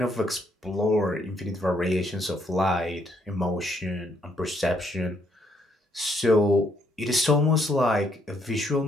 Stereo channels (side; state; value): both; normal; correlation 0.71